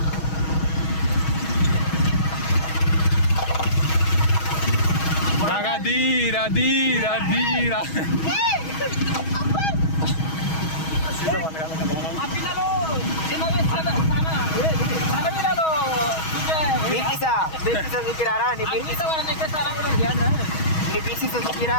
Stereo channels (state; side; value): late; right; 6.3 ms